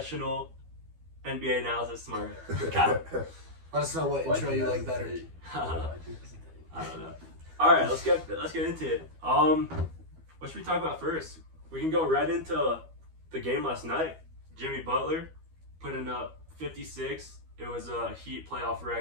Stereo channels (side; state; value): left; late; 12 ms